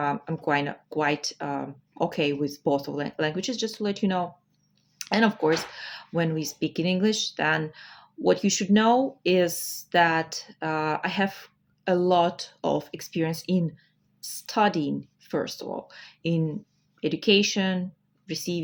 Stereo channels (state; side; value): identical; both; correlation 1.00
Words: quite okay with both of languages, just to let you know. And of course, when we speak in English, then what you should know is that I have a lot of experience in studying, first of all, in education,